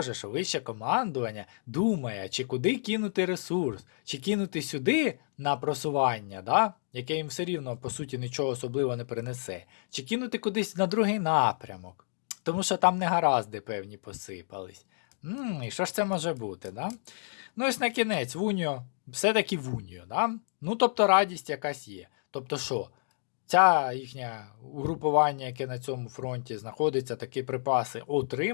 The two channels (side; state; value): right; silent; digital silence